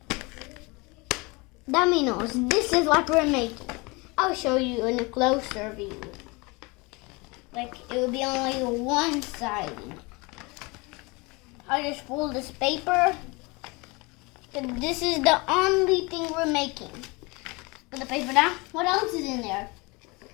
Dominos. This is what we're making. I'll show you in a closer view. Like it will be only one side. I'll just fold this paper. And this is the only thing we're making. Put the paper down. What else is in there?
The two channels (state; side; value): quieter; right; 26.5 dB